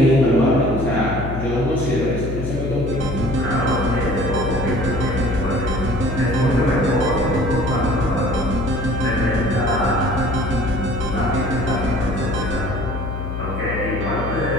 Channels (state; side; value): noise; left; hum, 5 dB below the sound